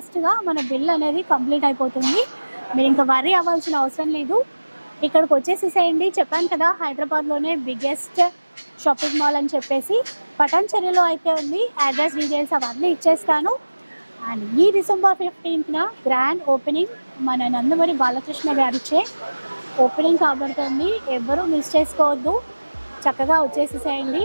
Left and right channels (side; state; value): both; inverted; correlation -1.00